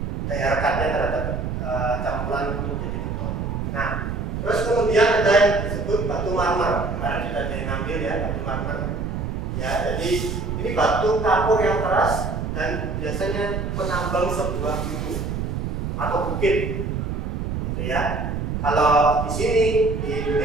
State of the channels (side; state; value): right; noise; rumble, 3 dB below the sound